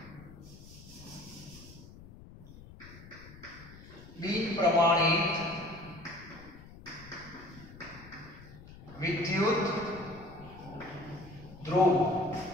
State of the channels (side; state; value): left; noise; rumble, 18 dB below the sound